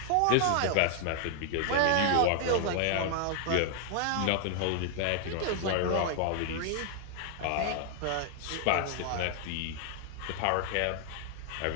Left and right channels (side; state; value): both; different; correlation 0.00